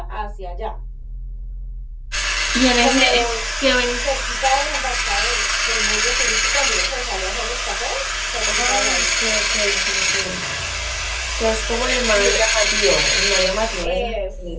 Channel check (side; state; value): both; identical; correlation 1.00